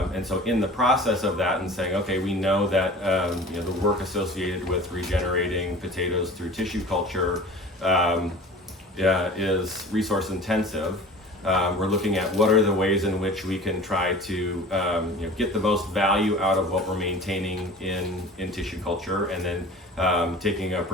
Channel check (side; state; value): both; normal; correlation 0.41